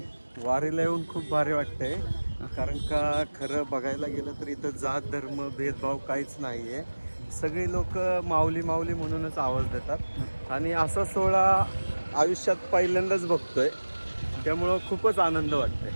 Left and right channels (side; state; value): both; inverted; correlation -1.00